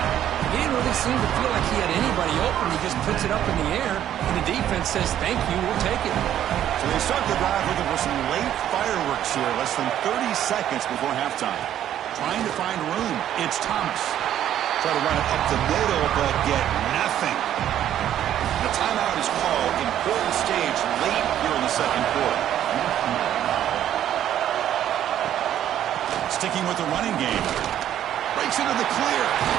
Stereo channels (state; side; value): quieter; left; 11.1 dB